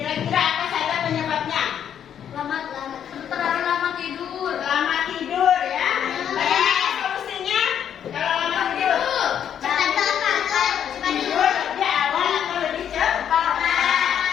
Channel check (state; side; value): quieter; right; 9.1 dB